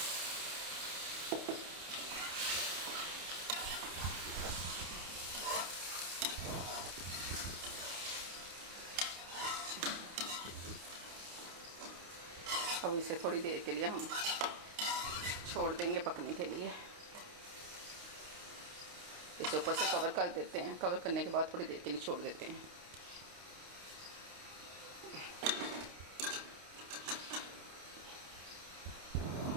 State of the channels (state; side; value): late; left; 29 ms